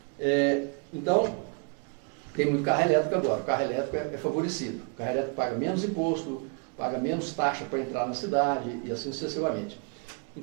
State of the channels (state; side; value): quieter; left; 37.0 dB